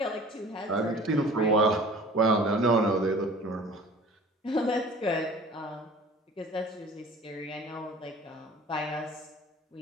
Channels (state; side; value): normal; both; correlation 0.45